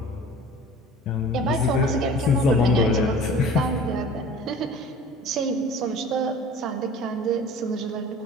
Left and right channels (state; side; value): normal; both; correlation 0.43